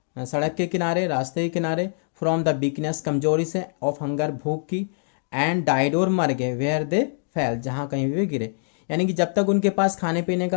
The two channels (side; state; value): right; silent; digital silence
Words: सड़क के किनारे, रास्ते के किनारे। फ्रॉम द वीकनेस, कमजोरी से। ऑफ हंगर, भूख की। एंड डाइड, और मर गए। वेयर दे फेल, जहाँ कहीं भी वे गिरे। यानी कि जब तक उनके पास खाने पीने